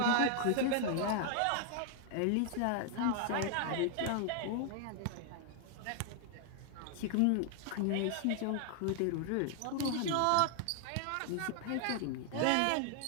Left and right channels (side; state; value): both; different; correlation 0.00